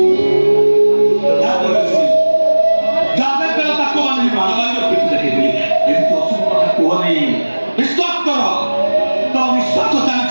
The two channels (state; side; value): inverted; both; correlation -1.00